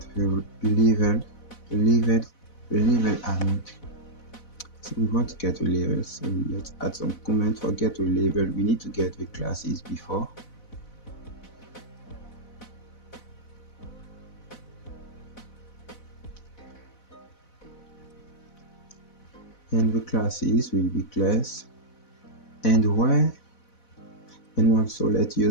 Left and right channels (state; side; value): late; right; 4.1 ms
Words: the level amount. So we want to get the level, so let's add some comment for get to level. We need to get the classes before. And the classes will be class and where, and also let's